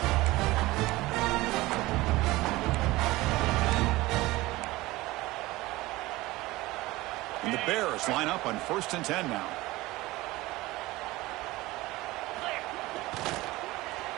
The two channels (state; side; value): quieter; left; 19.5 dB